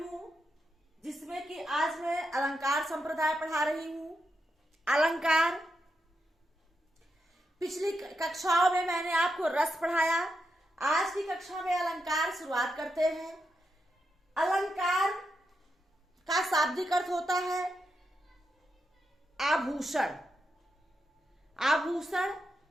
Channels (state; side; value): normal; both; correlation 0.85